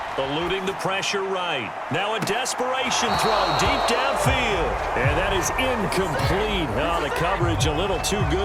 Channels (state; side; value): identical; both; correlation 1.00